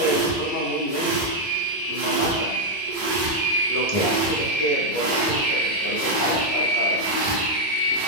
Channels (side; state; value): both; normal; correlation 0.00